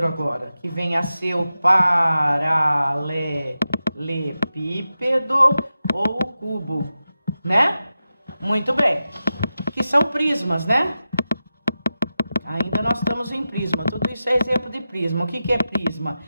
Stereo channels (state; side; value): inverted; both; correlation -0.92